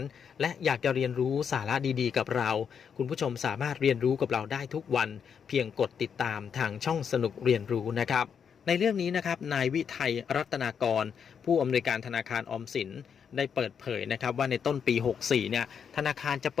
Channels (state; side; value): quieter; right; 7.2 dB